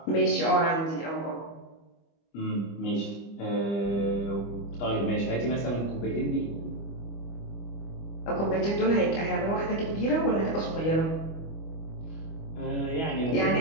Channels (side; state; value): right; late; 25 ms